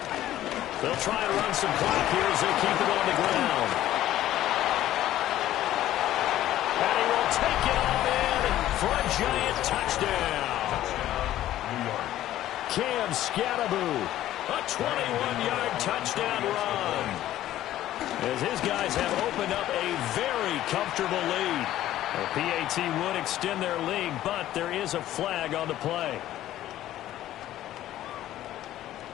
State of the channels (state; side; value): quieter; right; 13.5 dB